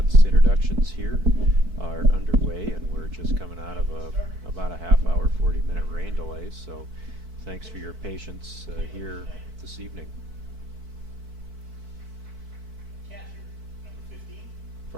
Introductions here are underway, and we're just coming out of about a half-hour, 40-minute rain delay. So, thanks for your patience here this evening.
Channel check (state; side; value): late; left; 4.6 ms